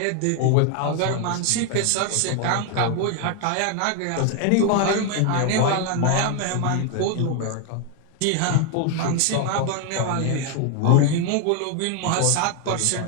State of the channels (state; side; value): different; both; correlation 0.01